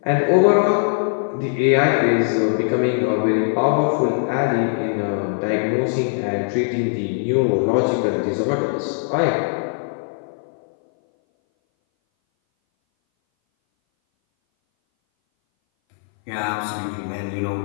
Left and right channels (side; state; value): right; silent; 60 dB below the other